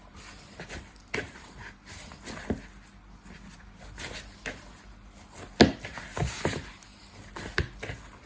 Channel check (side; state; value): both; identical; correlation 1.00